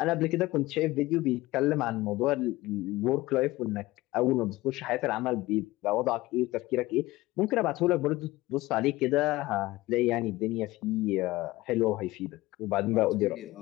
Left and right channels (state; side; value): quieter; right; 18.9 dB